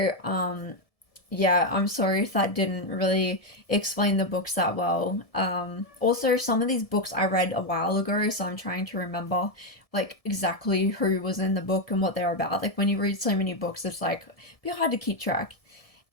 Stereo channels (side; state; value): right; late; 1.7 ms